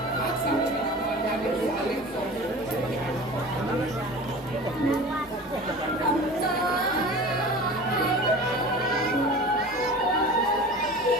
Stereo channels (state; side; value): normal; both; correlation 0.37